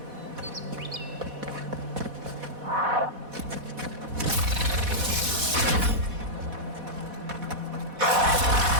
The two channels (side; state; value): left; late; 4.1 ms